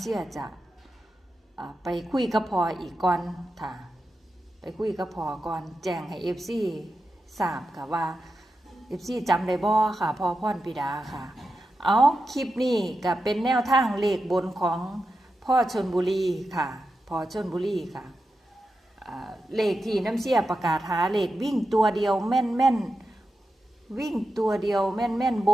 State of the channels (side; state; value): both; normal; correlation 0.90